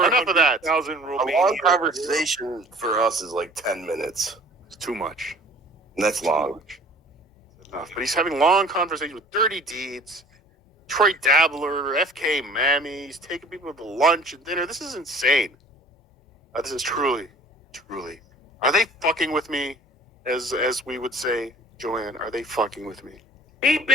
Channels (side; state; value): both; normal; correlation 0.48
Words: of that. 400,000 A Romanian. long conversation for us is like 10 minutes. It's too much. And that's long. Enough. But he's having long conversations with Dirty Deeds, Troy Dabbler, FK Mammy. He's taking people to lunch and dinner. This is insane. This is truly. Are they fucking with me? As we would say, Joanne, are they fucking with me? Keep